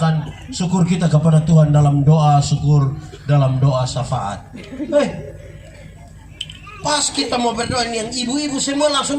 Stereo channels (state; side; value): identical; both; correlation 1.00